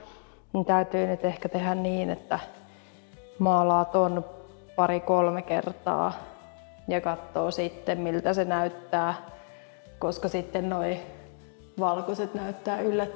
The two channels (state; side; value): silent; right; 58 dB below the other